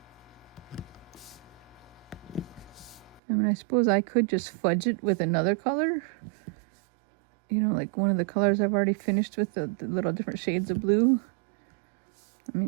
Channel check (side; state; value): left; drops out; at 3.2 s